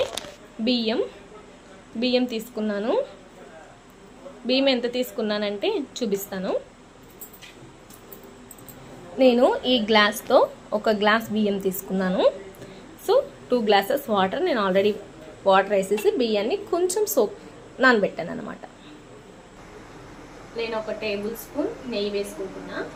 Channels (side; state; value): both; identical; correlation 1.00